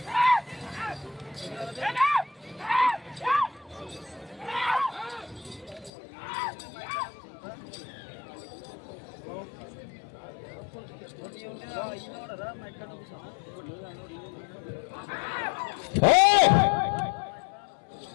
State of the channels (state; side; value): drops out; right; at 5.9 s